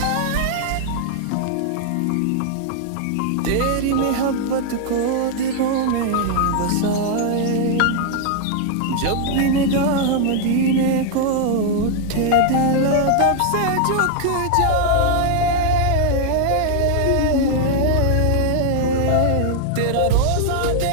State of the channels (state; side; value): different; both; correlation 0.00